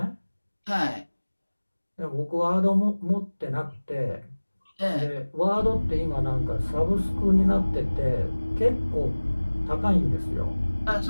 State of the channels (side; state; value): both; inverted; correlation -1.00